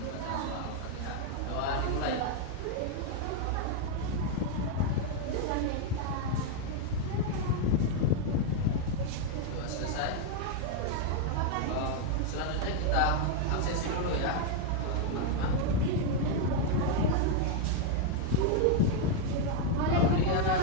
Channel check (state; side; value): different; both; correlation 0.00